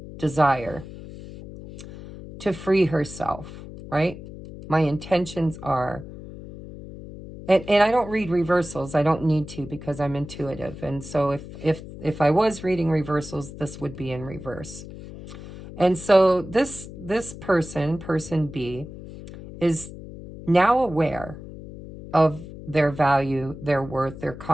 desire to free herself, right? My intentions are, and I don't read reversals. I don't need to because I'm intuitive. And so if I was reading reversals, this would be in reverse. And so this person B, is now aware of their value, their worth, their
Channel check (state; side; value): noise; left; hum, 13 dB below the sound